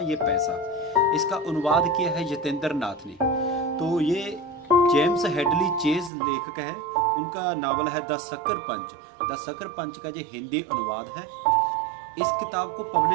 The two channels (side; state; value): left; drops out; at 6.1 s